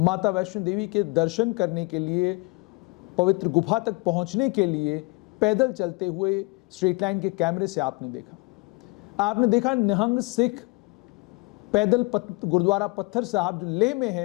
वैष्णो देवी के दर्शन करने के लिए, पवित्र गुफा तक पहुंचने के लिए पैदल चलते हुए स्ट्रेट लाइन के कैमरे से आपने देखा निहंग सिख पैदल गुरुद्वारा पत्थर साहब जो लेह में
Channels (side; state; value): right; quieter; 28.1 dB